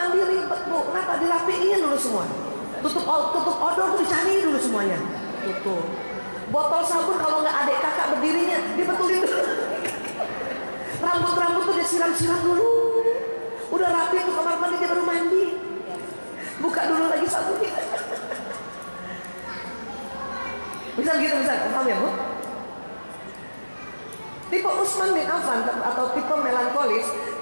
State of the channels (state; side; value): inverted; both; correlation -1.00